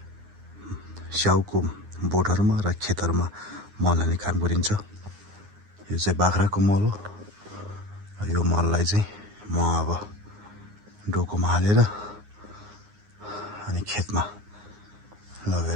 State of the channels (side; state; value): left; late; 9.7 ms